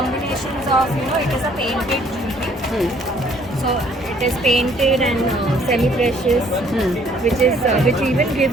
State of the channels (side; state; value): both; normal; correlation 0.61